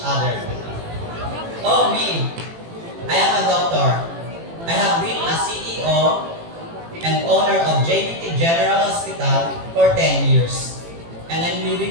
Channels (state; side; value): late; left; 18 ms